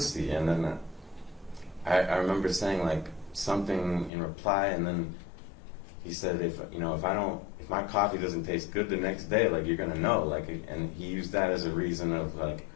And then I remember saying like something in reply, and then he said, if my coffee doesn't taste good the next day, like, you're gonna know, like, and he used that as a reason of like,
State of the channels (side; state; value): right; drops out; at 4.1 s